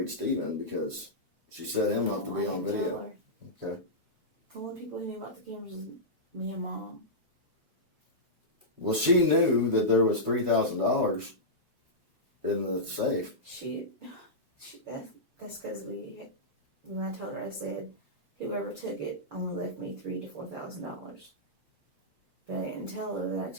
Stephen because she set him up to be on video. Okay. The only people who knew about the cameras was me and Mom. Well, she knew that there was $3,000 in the safe. That's because when I told her, I said, whoever took it only left me $3,000 to $4,000. But I didn't tell her that I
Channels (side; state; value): left; late; 1.2 ms